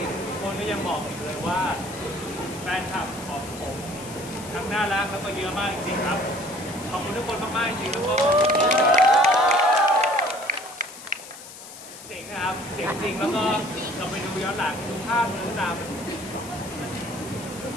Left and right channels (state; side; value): noise; left; hiss, 15 dB below the sound